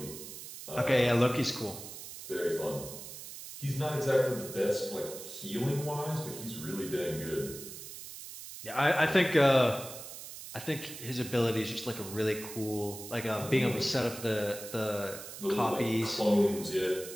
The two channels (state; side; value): noise; right; hiss, 12 dB below the sound